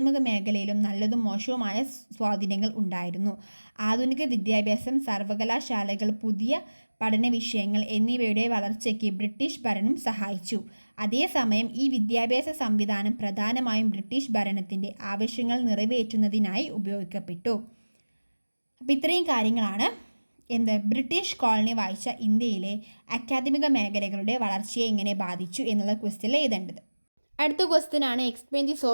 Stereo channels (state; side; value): inverted; both; correlation -1.00